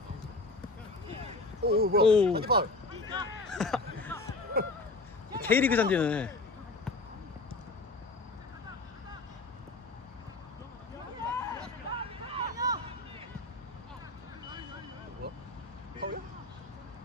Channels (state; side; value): quieter; right; 3.2 dB